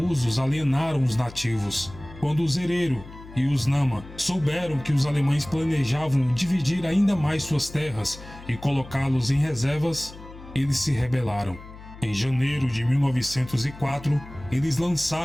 alienaram os nativos. Quando os Herero e os Nama souberam que os alemães planejavam dividir ainda mais suas terras e colocá-los em reservas, eles se rebelaram. Em janeiro de 1904, eles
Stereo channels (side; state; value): left; noise; hum, 17 dB below the sound